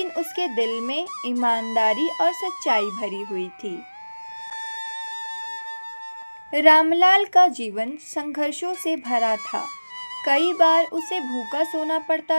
उसके दिल में ईमानदारी और सच्चाई भरी हुई थी। रामलाल का जीवन संघर्षों से भरा था। कई बार उसे भूखा सोना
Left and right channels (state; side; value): inverted; both; correlation -1.00